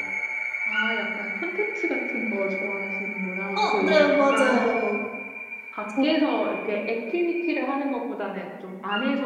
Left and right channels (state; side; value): identical; both; correlation 1.00